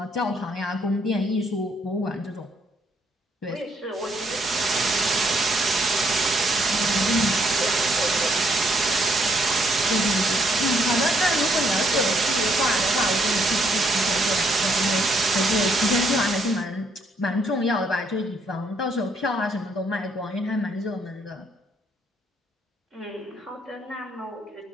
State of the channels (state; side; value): normal; both; correlation 0.70